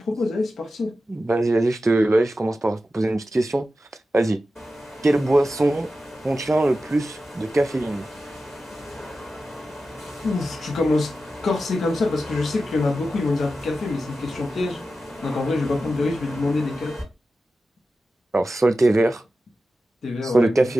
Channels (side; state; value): both; normal; correlation 0.92